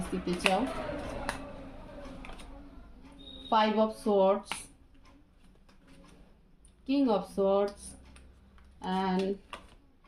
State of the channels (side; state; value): both; identical; correlation 1.00